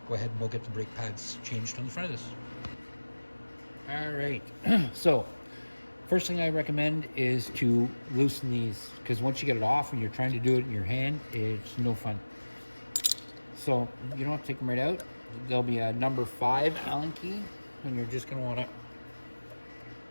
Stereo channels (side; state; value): both; inverted; correlation -1.00